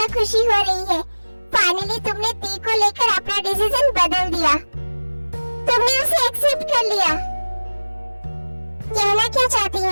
खुशी हो रही है। फाइनली तुमने टी को लेकर अपना डिसीजन बदल दिया। तुमने उसे एक्सेप्ट कर लिया। कहना क्या चाहती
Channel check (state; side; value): inverted; both; correlation -1.00